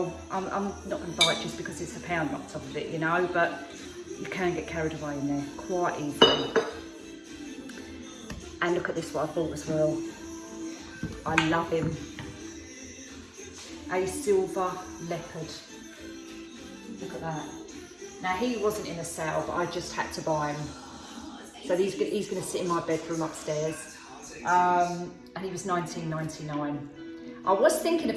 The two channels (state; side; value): identical; both; correlation 1.00